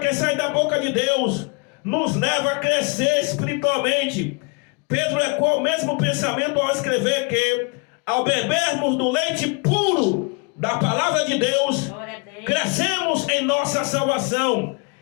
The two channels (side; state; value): right; quieter; 33.3 dB